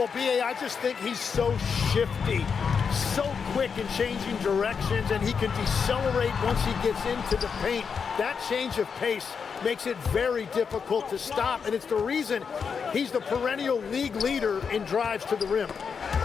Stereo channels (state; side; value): quieter; right; 6.1 dB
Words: B.A., I just think he's so shifty, so quick in changing directions, and he can decelerate once he gets into the paint. That change of pace makes it very difficult to stop, and it's the reason he's the perennial league leader in drives to the rim.